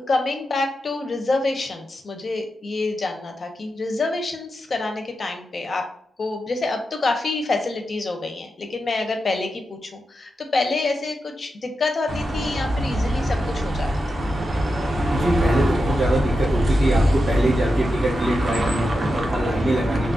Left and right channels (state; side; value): normal; both; correlation 0.89